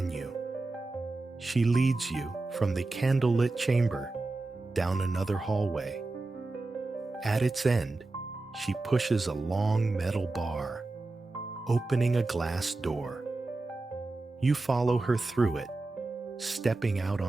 you. She leads you from the candlelit chamber down another hallway. At its end, she pushes a long metal bar, opening a glass door. You follow her through it, stepping out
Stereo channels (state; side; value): quieter; left; 3.2 dB